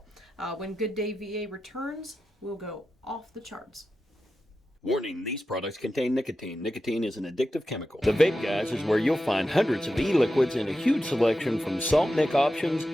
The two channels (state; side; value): normal; both; correlation 0.91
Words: When Good Day VA returns, we'll go off the charts. Warning, these products contain nicotine. Nicotine is an addictive chemical. The Vape Guys is where you'll find hundreds of e-liquids and a huge selection from salt nic options